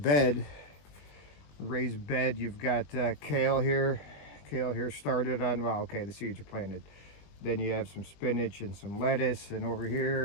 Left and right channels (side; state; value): right; late; 20 ms